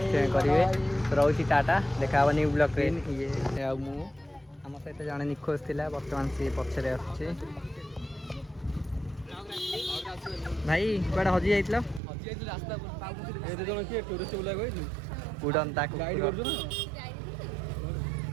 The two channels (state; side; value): drops out; left; at 12.0 s